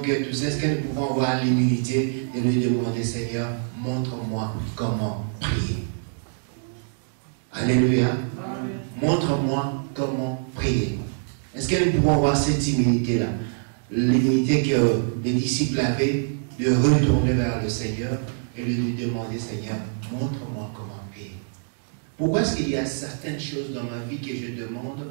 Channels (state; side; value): silent; left; digital silence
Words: tout ça, est-ce que nous pouvons avoir l'humilité de lui demander, Seigneur, montre-moi comment prier? Alléluia. Montre-moi comment prier. Est-ce que nous pouvons avoir cette humilité-là? L'humilité que les disciples avaient de retourner vers le Seigneur et de lui demander, Seigneur, montre-moi comment prier. Pourquoi est-ce qu'il y a certaines choses dans ma vie que je demande